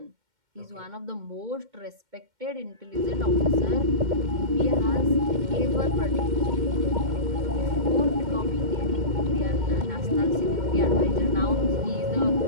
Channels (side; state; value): left; late; 2.1 ms